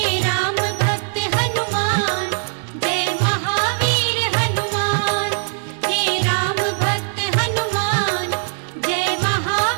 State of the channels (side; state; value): left; silent; 66 dB below the other